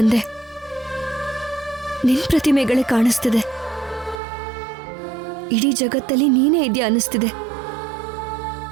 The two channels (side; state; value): left; drops out; at 4.2 s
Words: ನಿನ್ ಪ್ರತಿಮೆಗಳೇ ಕಾಣಿಸ್ತಿದೆ. ಇಡೀ ಜಗತ್ತಲ್ಲಿ ನೀನೇ ಇದೆಯಾ ಅನ್ನಿಸ್ತಿದೆ.